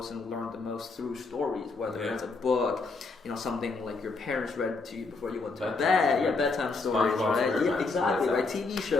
and learned the most through stories, whether it's a book, something like your parents read to you before you went to bed, bedtime stories, right? Yeah, exactly, right? TV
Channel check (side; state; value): right; quieter; 3.9 dB